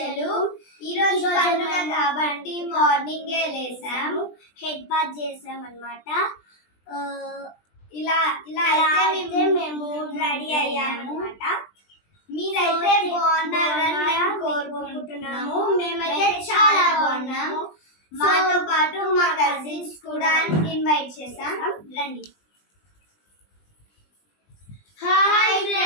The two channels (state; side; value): late; right; 20 ms